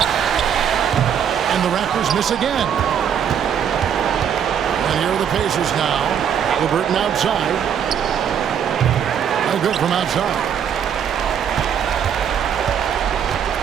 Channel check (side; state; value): left; quieter; 8.4 dB